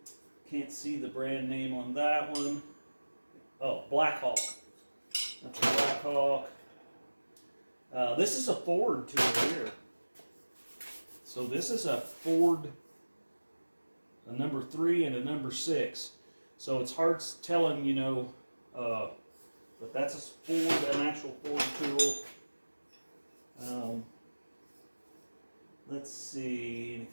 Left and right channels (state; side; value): inverted; both; correlation -1.00